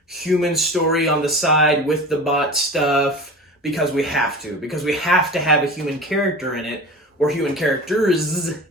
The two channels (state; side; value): normal; both; correlation 0.34